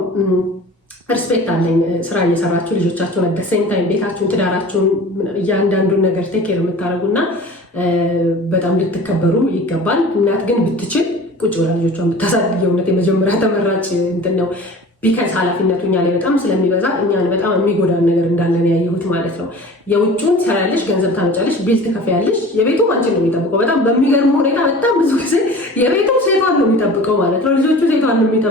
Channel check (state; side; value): normal; both; correlation 0.41